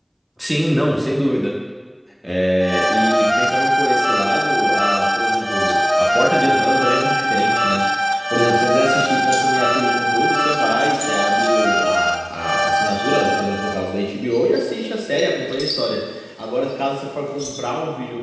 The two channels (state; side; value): identical; both; correlation 1.00